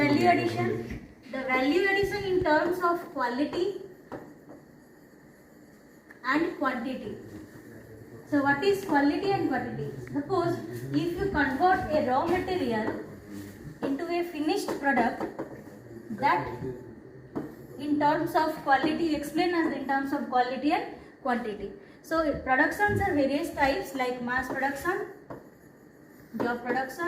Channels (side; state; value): both; identical; correlation 1.00